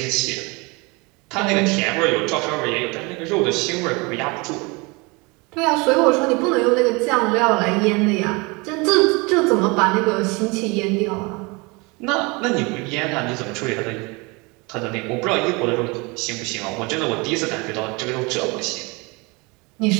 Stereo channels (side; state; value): left; quieter; 27.3 dB